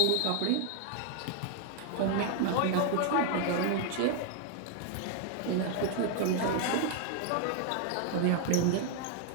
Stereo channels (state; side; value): different; both; correlation 0.00